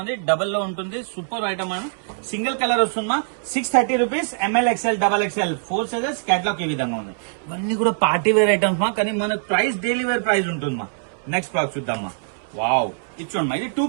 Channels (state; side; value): silent; left; 64 dB below the other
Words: డబల్ లో ఉంటుంది. సూపర్ ఐటమ్ సింగిల్ కలర్ వస్తుందమ్మా. 630 rupees. ML, XL, XXL 4 sizes. Catalogue ఈ విధంగా ఉంది. ఇవన్నీ కూడా పార్టీ వేర్ ఐటమ్స్ కానీ మనకు ప్రైస్ డైలీ వేర్ ప్రైస్ ఉంటుందమ్మా. నెక్స్ట్ ప్రోడక్ట్ చూద్దామా. వావ్, ఇచ్చోండి ఇది 2